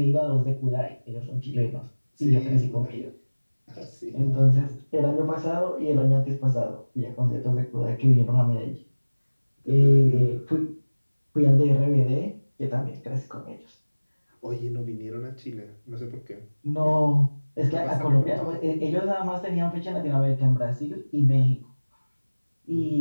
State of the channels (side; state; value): both; inverted; correlation -1.00